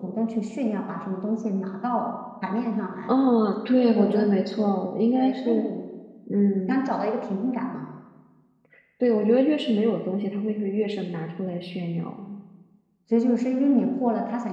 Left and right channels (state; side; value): identical; both; correlation 1.00